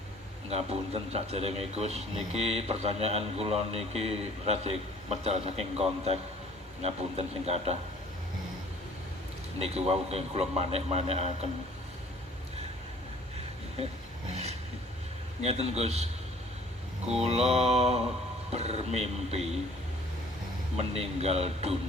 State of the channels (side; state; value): both; normal; correlation 0.53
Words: Ngapunten saderenge Gus, niki pertanyaan kula niki rada medal saking konteks. Ngapunten sing kathah. Niki wau kula manek-manekaken. Ngeten Gus, kula bermimpi meninggal